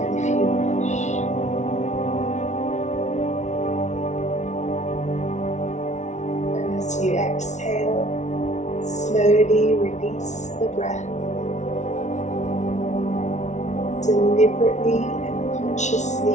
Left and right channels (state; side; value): late; right; 0.34 ms